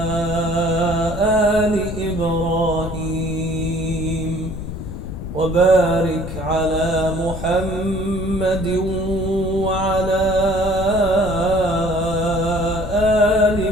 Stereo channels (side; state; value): left; noise; rumble, 8 dB below the sound